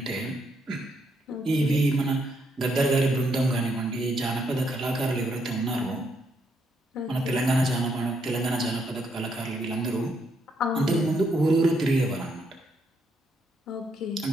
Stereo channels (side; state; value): both; normal; correlation 0.76